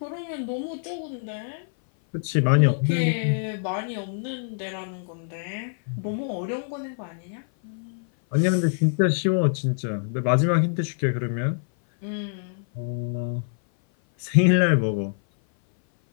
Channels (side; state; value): right; silent; 56 dB below the other